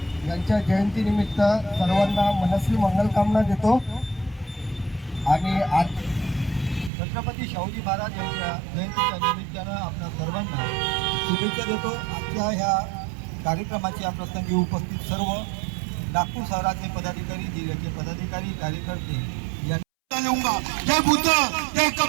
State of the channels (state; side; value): drops out; left; at 6.9 s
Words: यांच्या जयंतीनिमित्त सर्वांना मनस्वी मंगलकामना देतो आणि आज छत्रपती शाहूजी महाराज यांच्या जयंतीच्या निमित्तानं आपल्या सर्वांना शुभेच्छा देतो। आजच्या ह्या कार्यक्रमाच्या प्रसंगी उपस्थित सर्व नागपूर शहराचे पदाधिकारी, जिल्ह्याचे पदाधिकारी, कार्यकर्ते लूंगा। जय बुद्ध, जय